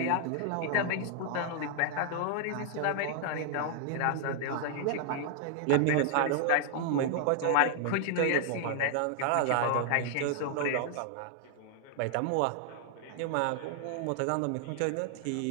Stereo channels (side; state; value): both; different; correlation 0.00